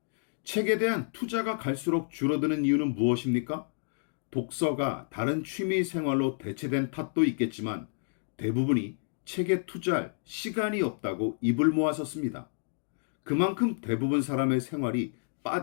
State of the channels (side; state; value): right; silent; digital silence